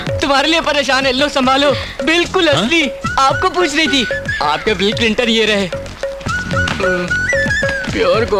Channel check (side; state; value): both; identical; correlation 1.00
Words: तुम्हारे लिए परेशान है, लो संभालो। बिल्कुल असली। आपको पूछ रही थी। आपके बिल क्लिंटन ये रहे। प्योर